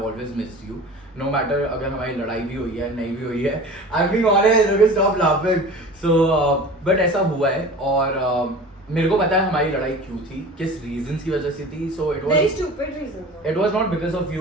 always missed you. No matter अगर हमारी लड़ाई भी हुई है, नहीं भी हुई है. I'm being honest, okay, stop laughing. So, but ऐसा हुआ है और मेरे को पता है हमारी लड़ाई क्यों थी, किस reasons की वजह से थी. So it was very stupid reasons. It was not because of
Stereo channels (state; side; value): normal; both; correlation 0.38